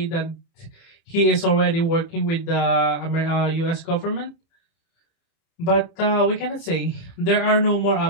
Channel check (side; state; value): right; late; 30 ms